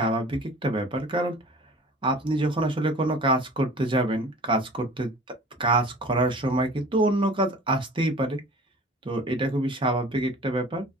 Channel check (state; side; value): normal; both; correlation 0.44